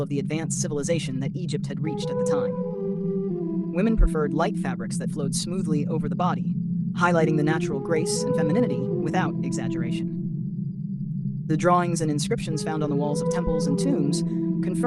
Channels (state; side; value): identical; both; correlation 1.00